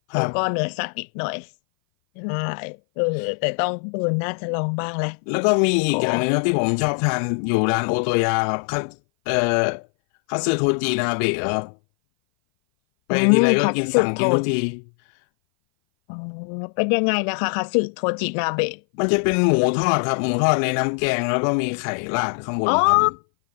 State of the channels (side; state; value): right; silent; 58 dB below the other